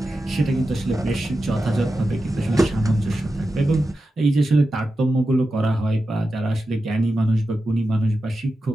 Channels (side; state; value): both; normal; correlation 0.91